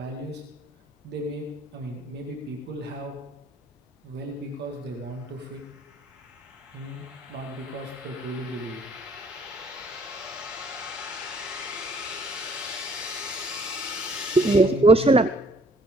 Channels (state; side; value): normal; both; correlation 0.60